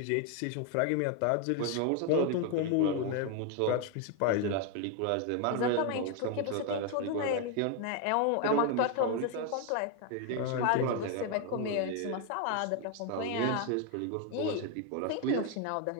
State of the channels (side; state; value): both; different; correlation 0.01